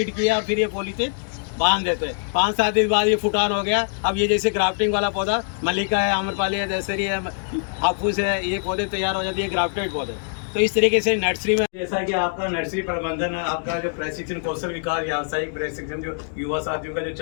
किया और फिर ये पॉलीथीन बांध देते हैं। 5-7 दिन बाद ये फुटान हो गया। अब ये जैसे ग्राफ्टिंग वाला पौधा मल्लिका है, आम्रपाली है, दशहरी है, हाफूस है, ये पौधे तैयार हो जाती है ग्राफ्टेड पौधे। तो इस तरीके से नर्सरी में, जैसा कि आपका नर्सरी प्रबंधन है, आपका जो प्रशिक्षण कौशल विकास व्यावसायिक प्रशिक्षण जो युवा साथियों का जो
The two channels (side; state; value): right; silent; digital silence